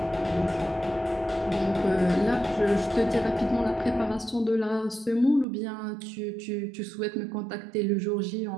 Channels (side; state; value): left; drops out; at 5.5 s